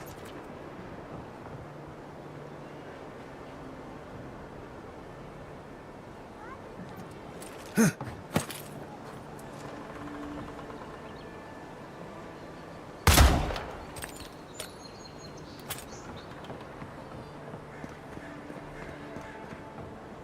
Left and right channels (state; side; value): identical; both; correlation 1.00